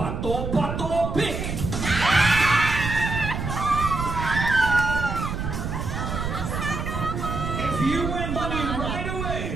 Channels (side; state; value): right; noise; rumble, 4 dB below the sound